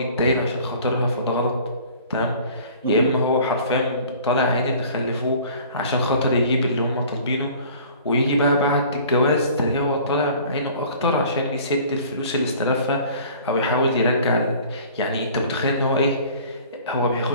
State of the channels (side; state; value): both; inverted; correlation -0.48